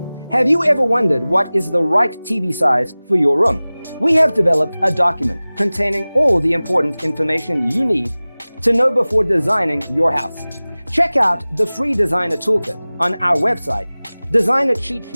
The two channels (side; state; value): both; inverted; correlation -0.99